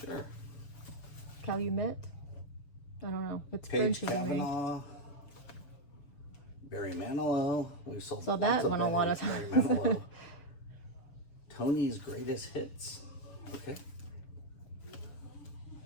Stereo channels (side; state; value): right; late; 6.9 ms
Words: Calumet? I don't know. It's Paige French. Kavanaugh. Barry Manilow. We've sold So lots that of one a Barry, lot of Barry times. Manilow. Tony's Greatest Hits. Okay.